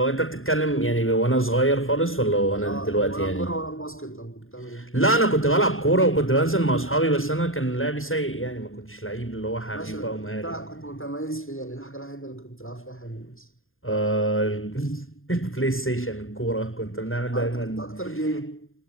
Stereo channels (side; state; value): right; late; 0.60 ms